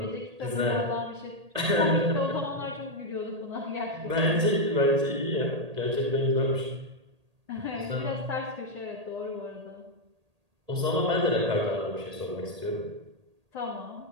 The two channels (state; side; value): late; left; 1.8 ms